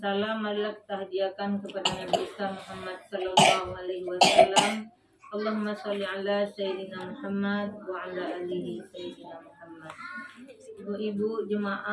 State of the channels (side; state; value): both; identical; correlation 1.00